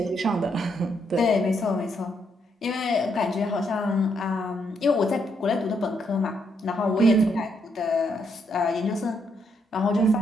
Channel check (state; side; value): normal; both; correlation 0.76